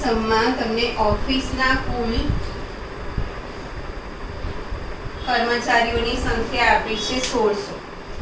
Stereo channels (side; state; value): both; identical; correlation 1.00